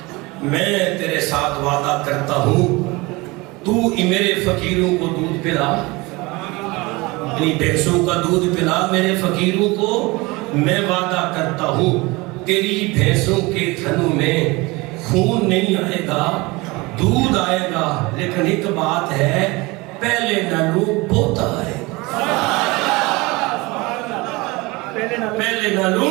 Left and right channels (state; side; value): quieter; left; 23.8 dB